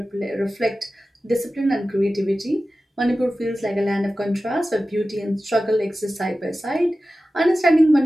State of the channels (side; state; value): both; normal; correlation 0.95